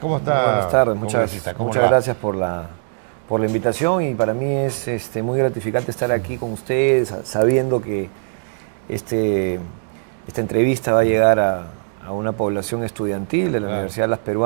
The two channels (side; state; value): left; silent; digital silence